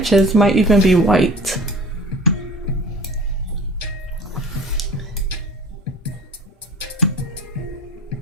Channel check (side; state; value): both; normal; correlation 0.43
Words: might even be white.